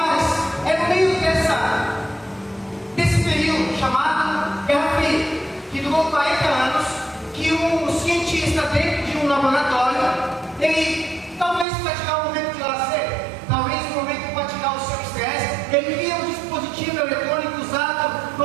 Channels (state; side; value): drops out; left; at 11.7 s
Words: um cientista dentro de um laboratório, ele talvez para tirar um momento de lazer, talvez um momento para tirar o seu estresse, ele cria um dispositivo eletrônico usado